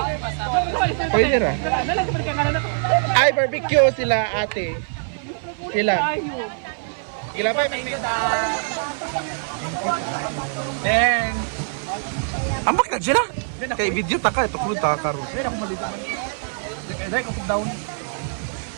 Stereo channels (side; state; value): left; silent; 56 dB below the other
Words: Pwede ra. Ay, barbecue sila ate. Sila. Sila ba? Then, Ambak na dyan Kay video taka, ito kung taka ro. wala akong malito. Dahil ko down.